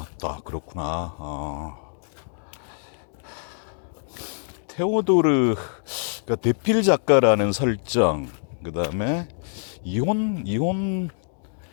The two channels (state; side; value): silent; right; 62 dB below the other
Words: 그렇구나. 테오도르, 그러니까 대필 작가라는 설정, 그 다음에 이혼